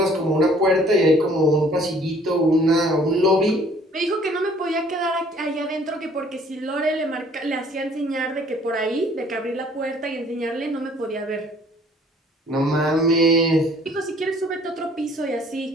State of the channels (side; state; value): both; normal; correlation 0.57